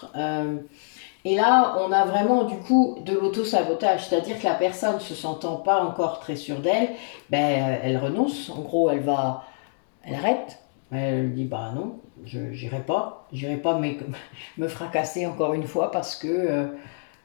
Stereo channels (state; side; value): silent; right; digital silence